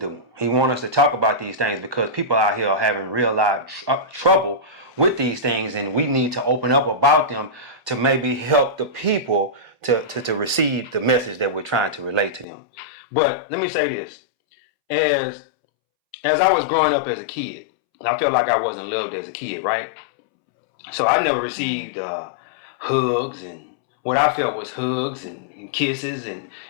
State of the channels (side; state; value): right; drops out; at 12.5 s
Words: He wants us to talk about these things because people out here are having real life trouble with these things, and we need to open up about them to maybe help the people to receive the message that we're trying to relate to them. But let me say this. As I was growing up as a kid, I felt like I wasn't loved as a kid, right? So I never received hugs and what I felt was hugs and kisses and